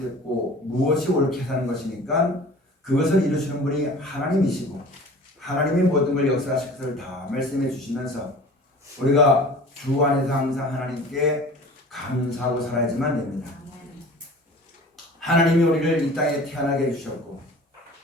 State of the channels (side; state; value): both; normal; correlation 0.43